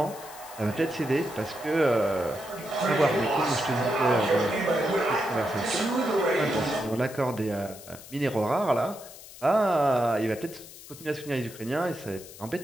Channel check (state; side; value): noise; left; hiss, 17 dB below the sound